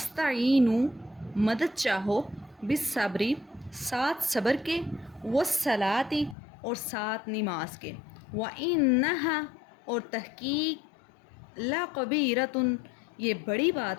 مدد چاہو، بالصبری، ساتھ صبر کے، والصلاۃ، اور ساتھ نماز کے، وَإِنَّهَا، اور تحقیق، لَقَبِیرَةٌ، یہ بڑی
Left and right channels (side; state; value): right; drops out; at 6.4 s